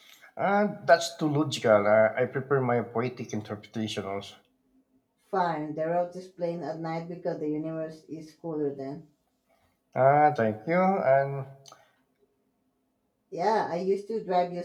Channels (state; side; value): identical; both; correlation 1.00